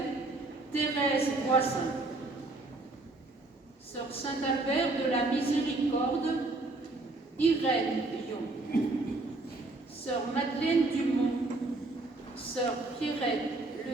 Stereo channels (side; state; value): left; quieter; 3.1 dB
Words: Thérèse Voisin. Sœur Saint-Albert de la Miséricorde, Irène Lyon. Sœur Madeleine Dumont, Sœur Pierrette